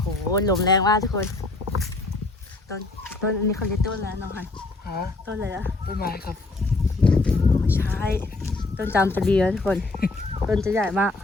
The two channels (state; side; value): quieter; right; 3.2 dB